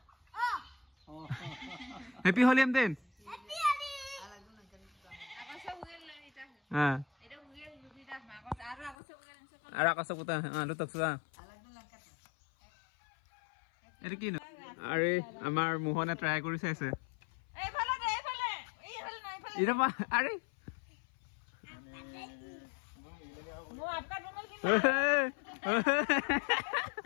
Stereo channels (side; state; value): right; drops out; at 9.0 s